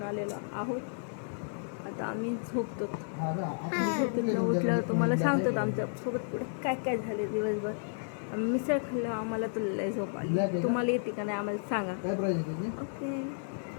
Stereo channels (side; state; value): right; silent; digital silence